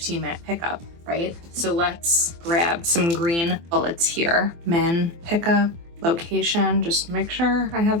pickup, right? So let's grab some green bullets here. Min pickup, location, just make sure I have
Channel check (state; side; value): late; left; 24 ms